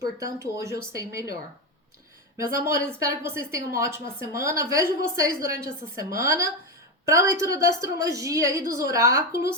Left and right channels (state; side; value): normal; both; correlation 0.13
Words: hoje eu sei melhor. Meus amores, espero que vocês tenham uma ótima semana. Vejo vocês durante essa semana para a leitura da astrologia e dos